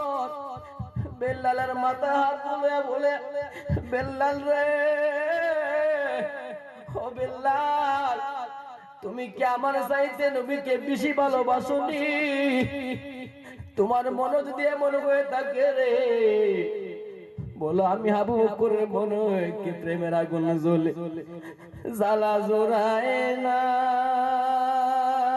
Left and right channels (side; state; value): both; identical; correlation 1.00